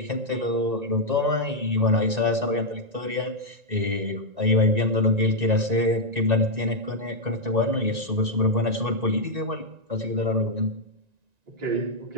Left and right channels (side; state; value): left; late; 1.9 ms